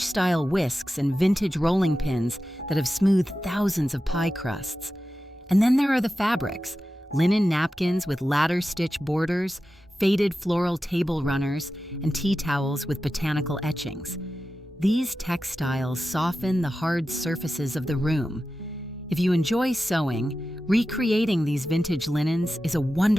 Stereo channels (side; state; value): both; normal; correlation 0.93